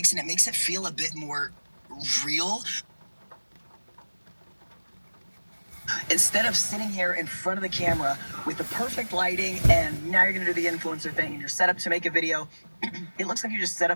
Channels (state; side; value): inverted; both; correlation -1.00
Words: and it makes it feel a bit more real. Instead of sitting here in front of the camera with the perfect lighting and now you're going to do the influencer thing and you're set up to make a video, it looks like you're just set